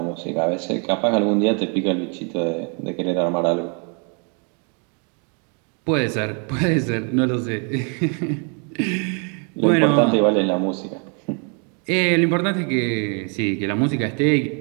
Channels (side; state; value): left; quieter; 37.6 dB